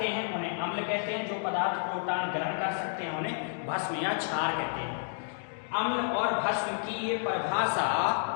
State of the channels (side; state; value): right; silent; digital silence